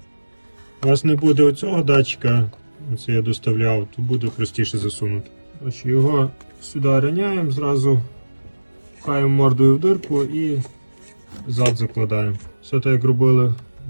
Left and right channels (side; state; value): both; inverted; correlation -1.00